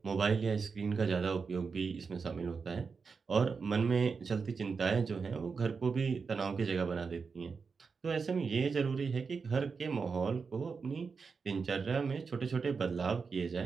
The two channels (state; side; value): quieter; left; 5.2 dB